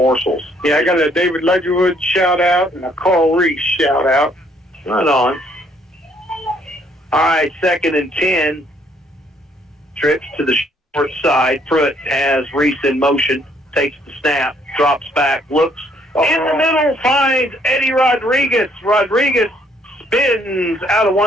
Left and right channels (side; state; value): both; normal; correlation 0.66